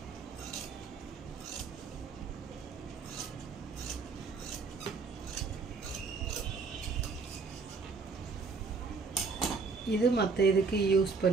இது மற்ற இதுக்கு யூஸ்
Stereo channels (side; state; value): left; quieter; 4.5 dB